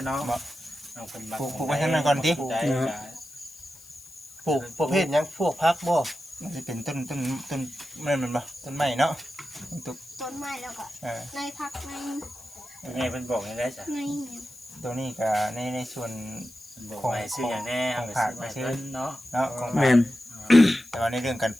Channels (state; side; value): noise; left; hiss, 22 dB below the sound